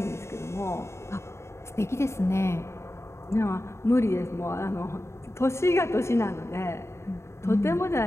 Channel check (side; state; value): right; late; 0.13 ms